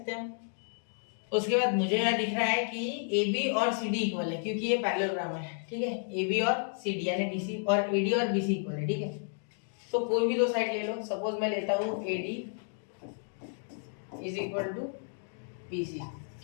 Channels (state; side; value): silent; right; 57 dB below the other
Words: हैं हम, उसके बाद मुझे यहाँ दिख रहा है कि AB और CD इक्वल है, क्योंकि ये पैरेललोग्राम है। ठीक है, AB और CD यानी DC, और AD और BC इक्वल है। ठीक है, तो कोई भी दो साइड ले लो, सपोज मैं लेता हूँ AD is equal to BC।